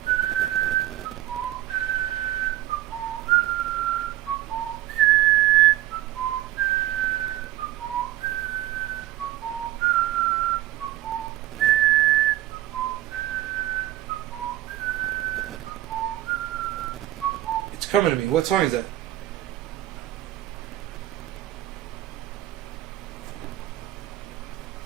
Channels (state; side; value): quieter; left; 15.3 dB